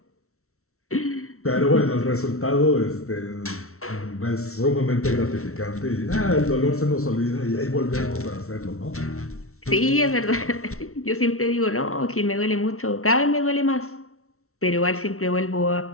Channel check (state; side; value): late; right; 0.63 ms